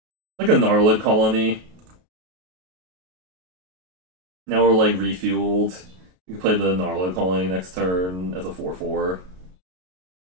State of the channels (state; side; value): late; left; 33 ms